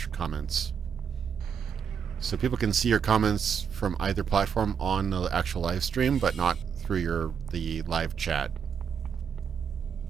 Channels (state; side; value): quieter; left; 7.2 dB